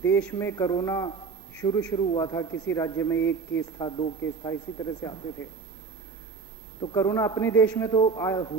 देश में कोरोना शुरू हुआ था, किसी राज्य में 1 केस था, 2 केस था, इसी तरह से आते थे, तो कोरोना अपने देश में तो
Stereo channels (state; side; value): quieter; left; 5.1 dB